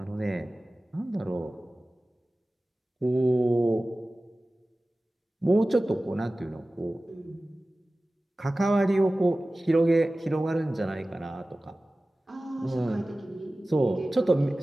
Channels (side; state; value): both; normal; correlation 0.97